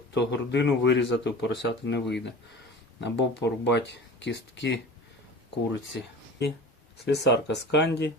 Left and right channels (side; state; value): both; normal; correlation 0.37